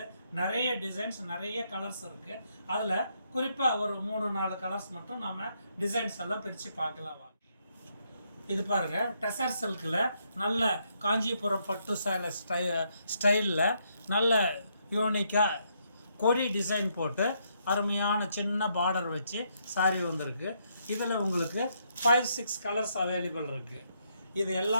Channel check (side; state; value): both; inverted; correlation -0.75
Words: நிறைய டிசைன்ஸ், நிறைய கலர்ஸ் இருக்குது. அதில் குறிப்பாக ஒரு 3-4 கலர்ஸ் மட்டும் நம்ம டிசைன்ஸ் எல்லாம் பிரித்து பார்க்கலாம். இது பாருங்க, டெசர் சில்கில் நல்ல காஞ்சிபுரம் பட்டு சேலை ஸ்டைலில் நல்ல யூனிக்காக கொடி டிசைன் போட்டு அருமையான சின்ன பார்டர் வச்சு சாரி வந்திருக்கு. இதில் உங்களுக்கு 5-6 கலர்ஸ் அவைலபிள் இருக்குது. இது